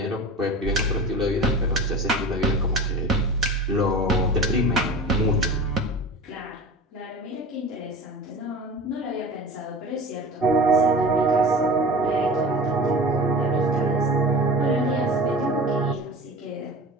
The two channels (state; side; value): normal; both; correlation 0.35